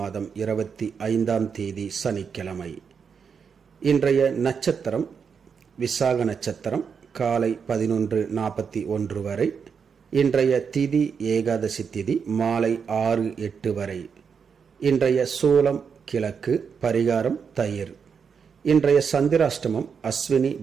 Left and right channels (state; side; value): quieter; left; 6.3 dB